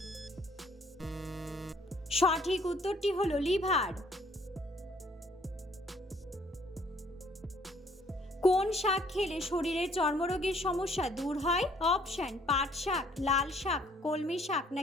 সঠিক উত্তরটি হলো লিভার। কোন শাক খেলে শরীরের চর্মরোগের সমস্যা দূর হয়? অপশন পাট শাক, লাল শাক, কলমি শাক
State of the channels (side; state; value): both; normal; correlation 0.61